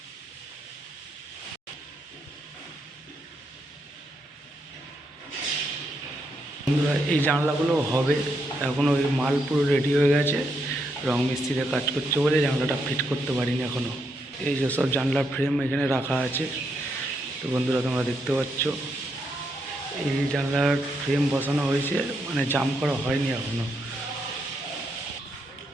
বন্ধুরা এই জানলাগুলো হবে, এখনও ওই মাল পুরো রেডি হয়ে গেছে, রং মিস্ত্রিতে কাজ করছে বলে জানলাটা ফিট করতে পারিনি এখনও। এই যে সব জানলার ফ্রেম এখানে রাখা আছে, তো বন্ধুরা তোমরা দেখতে পাচ্ছ এই জানলার ফ্রেম বসানো হয়েছে, মানে জাম করা হয়নি এখনও।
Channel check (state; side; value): normal; both; correlation 0.79